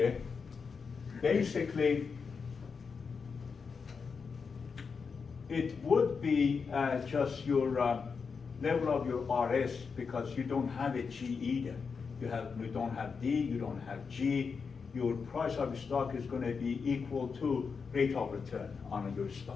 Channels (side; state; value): right; quieter; 5.4 dB